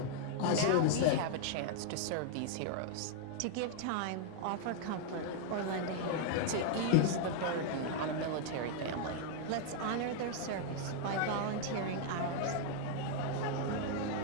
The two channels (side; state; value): both; different; correlation 0.00